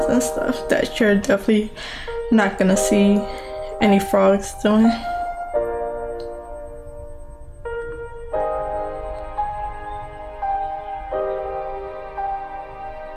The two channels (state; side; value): identical; both; correlation 1.00